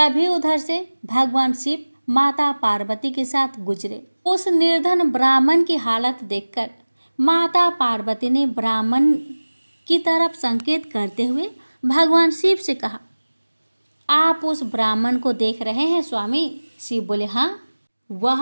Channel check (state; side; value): inverted; both; correlation -1.00